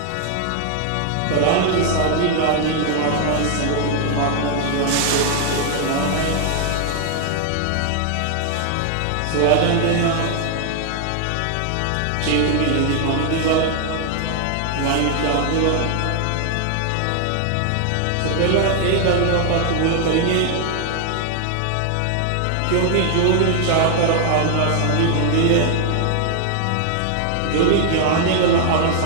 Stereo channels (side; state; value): both; different; correlation 0.00